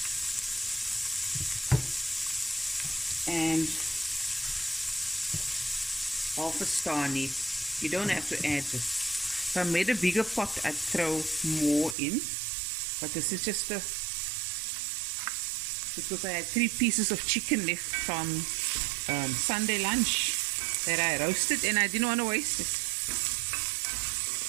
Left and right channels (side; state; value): left; drops out; at 12.0 s